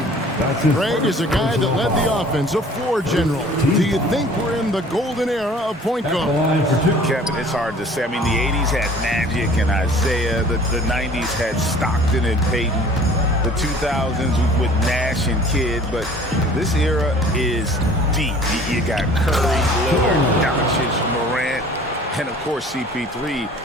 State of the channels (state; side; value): normal; both; correlation 0.50